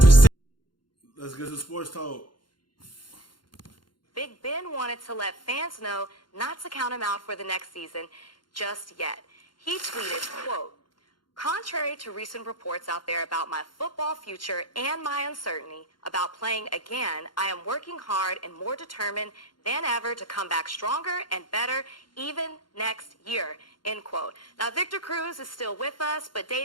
safe. Let's get to sports talk. Big Ben wanted to let fans know not to count him out for the next season just yet. He tweeted, quote, "Contrary to recent reports out there about my football future and my uncertainty about playing again, I am working hard and more determined than ever to come back stronger and better even next year," end quote. Now, Victor Cruz is still with us, but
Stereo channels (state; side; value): late; right; 0.72 ms